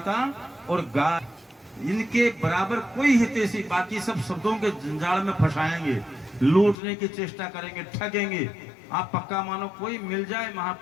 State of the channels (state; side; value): drops out; right; at 6.8 s